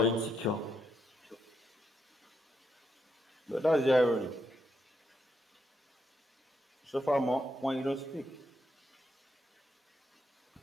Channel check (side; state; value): both; normal; correlation 0.79